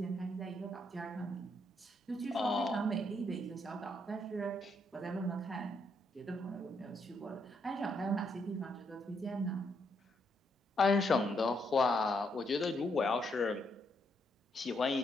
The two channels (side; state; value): both; normal; correlation 0.76